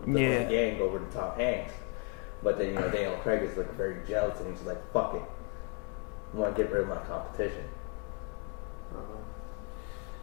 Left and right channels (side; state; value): right; quieter; 28.4 dB